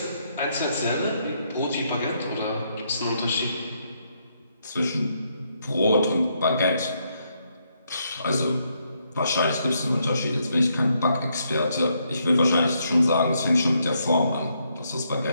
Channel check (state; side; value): inverted; both; correlation -0.76